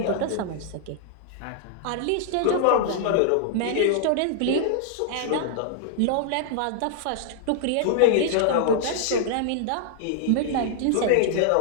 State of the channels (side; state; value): both; different; correlation -0.01